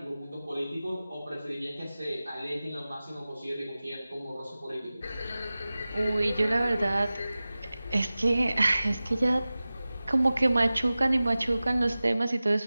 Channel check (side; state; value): both; inverted; correlation -0.97